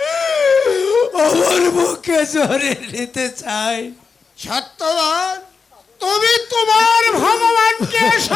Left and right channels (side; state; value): right; quieter; 5.2 dB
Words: আমার মুখে জড়িয়ে নিতে চাই। সত্যবান, তুমি তোমার ভগবানকে